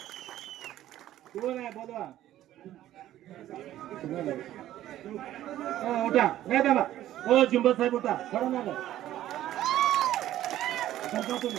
कोण आहे? बोलवा. उठा. नाही दादा. हो जिंबल साहेब उठा. पडणार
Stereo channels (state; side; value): quieter; left; 13.2 dB